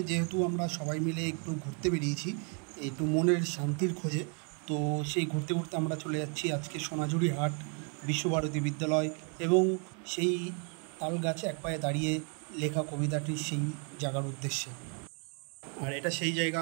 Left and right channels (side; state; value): left; quieter; 38.3 dB